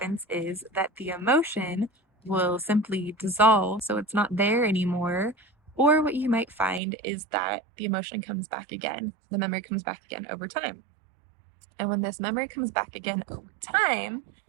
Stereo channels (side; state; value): left; drops out; at 6.8 s